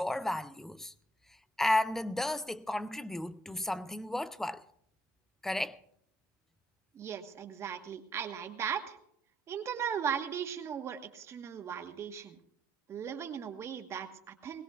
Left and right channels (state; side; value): normal; both; correlation 0.74